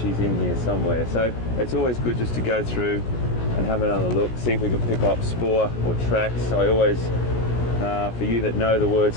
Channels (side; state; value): right; late; 17 ms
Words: in here somewhere, so it's always good just to go through and have another look, see if we can pick up spoor or tracks. I always, for you that know the word